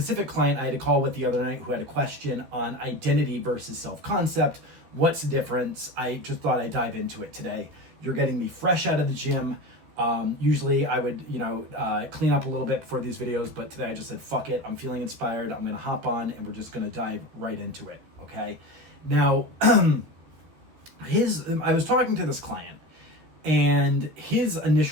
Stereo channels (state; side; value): late; left; 13 ms